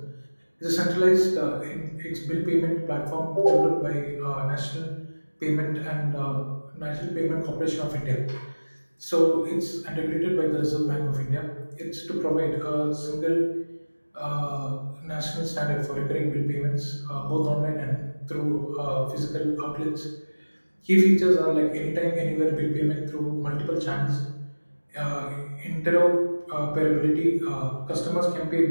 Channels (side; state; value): both; inverted; correlation -1.00